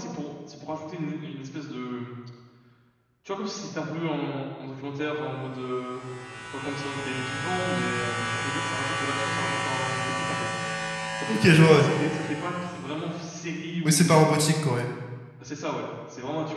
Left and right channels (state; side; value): identical; both; correlation 1.00